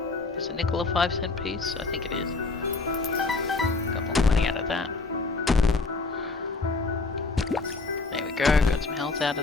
Is a nickel a 5-cent piece? I think it is. Got more money out of that. There we go. Got some health out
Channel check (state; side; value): quieter; right; 3.7 dB